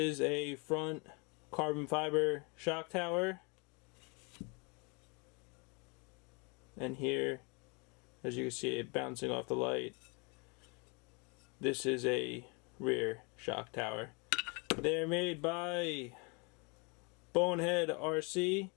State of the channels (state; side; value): quieter; right; 31.7 dB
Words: a front carbon fiber shock tower. And here, as you can see it bouncing off the light, this is a rear shock tower. They're made by Bonehead RC.